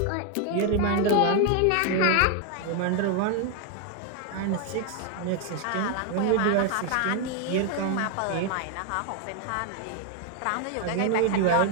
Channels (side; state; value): both; different; correlation 0.01